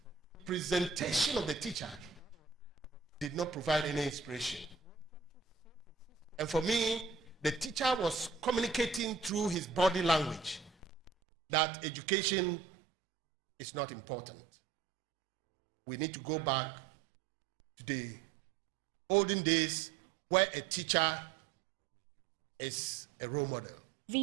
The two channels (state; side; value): drops out; left; at 11.1 s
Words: Presentation of the teacher did not provide any inspiration. And for me, the teacher was communicating through his body language that education is not important. We need to go back to the olden days where a teacher is a role model.